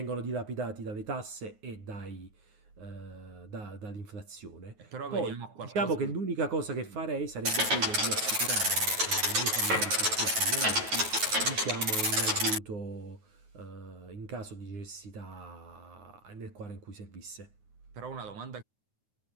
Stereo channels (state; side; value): late; left; 9.2 ms